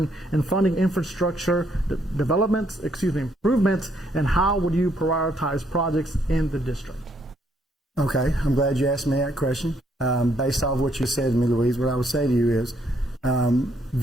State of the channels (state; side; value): normal; both; correlation 0.71